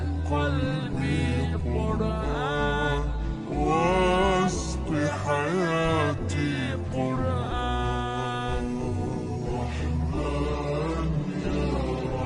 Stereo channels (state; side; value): identical; both; correlation 1.00